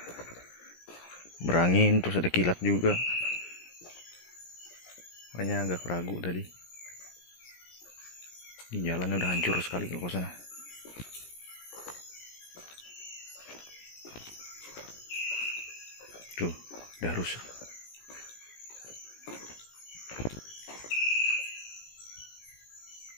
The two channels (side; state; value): right; late; 17 ms